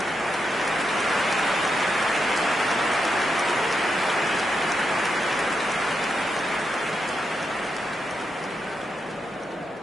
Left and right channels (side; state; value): both; normal; correlation 0.84